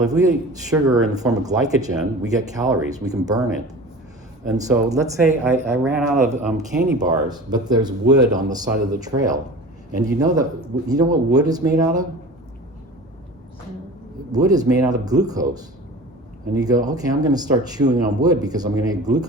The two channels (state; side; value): normal; both; correlation 0.37